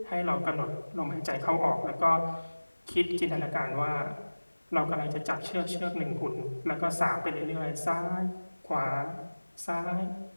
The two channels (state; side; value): inverted; both; correlation -1.00